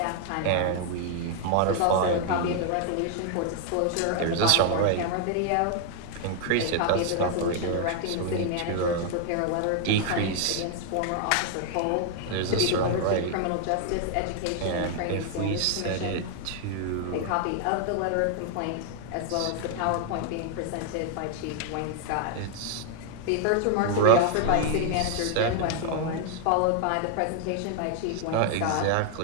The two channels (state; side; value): different; both; correlation 0.00